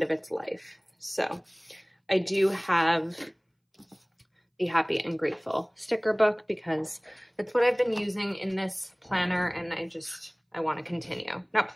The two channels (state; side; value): identical; both; correlation 1.00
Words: of its life. So I do have the Happy and Grateful sticker book because that's what I've been using in this planner, and I want to continue. Not